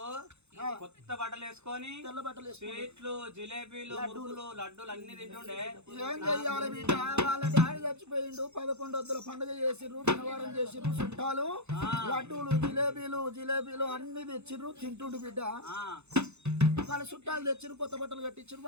కొత్త బట్టలు వేసుకొని తెల్ల బట్టలు స్వీట్లు జిలేబీలు మురుకులు లడ్డూలు అన్ని తింటుండే. ఏం చెయ్యాలి బిడ్డ వాళ్ళ డాడీ చచ్చిపోయిండు 11 వద్దుల పండుగ చేసిర్రు శనివారం చేసిర్రు చుట్టాలు లడ్డూలు జిలేబీలు అన్ని తెచ్చిర్రు తింటుండు బిడ్డ వాళ్ళ చుట్టాలు తెచ్చిర్రు కొత్త బట్టలు కట్టించారు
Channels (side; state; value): left; late; 0.81 ms